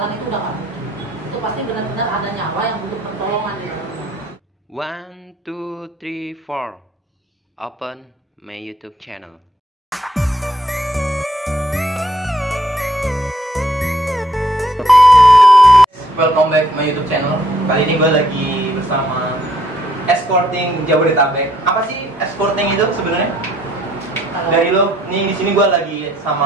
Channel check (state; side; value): normal; both; correlation 0.67